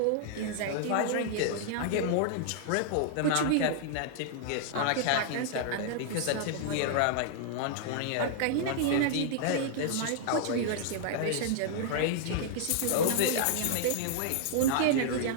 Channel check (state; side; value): different; both; correlation -0.01